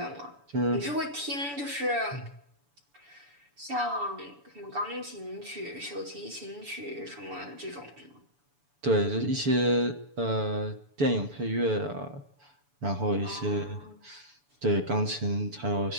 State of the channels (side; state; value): left; late; 7.0 ms